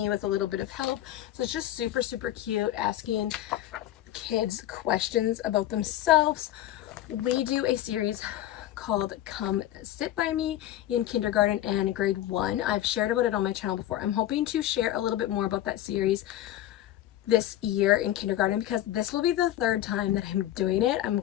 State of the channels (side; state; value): right; quieter; 13.3 dB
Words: with a little bit of help. So it's just super cute, asking kids questions about themselves. We do a series called Come Sit By Me in kindergarten and grade 1. I've shared about it on my channel before. I'm hoping to share a little bit more about that series this year in kindergarten because this will be the third time that I'm doing it. I'm